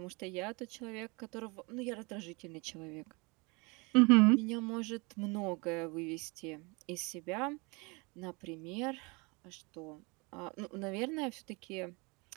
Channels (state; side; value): quieter; left; 28.4 dB